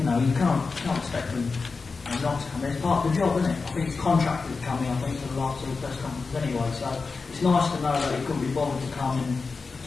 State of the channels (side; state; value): right; quieter; 4.4 dB